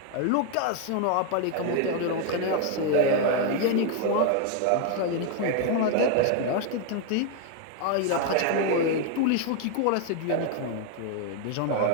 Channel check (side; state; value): both; different; correlation 0.01